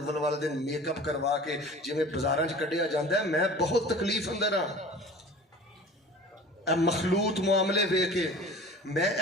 والے دن میک اپ کروا کے جویں بازاراں چ کڈیا جاندا ہے، میں بہت تکلیف اندر ہاں۔ اے مخلوط معاملے ویکھ کے میں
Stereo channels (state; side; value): normal; both; correlation 0.41